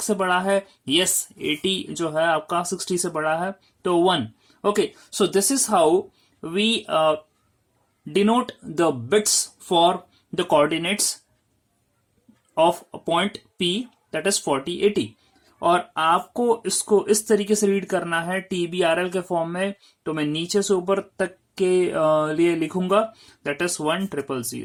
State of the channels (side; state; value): both; identical; correlation 1.00